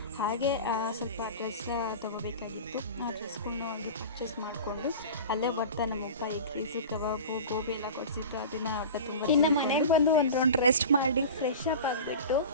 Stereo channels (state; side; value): inverted; both; correlation -0.34